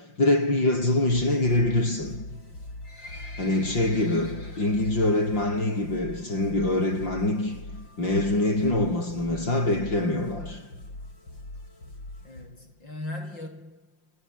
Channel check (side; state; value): right; late; 5.7 ms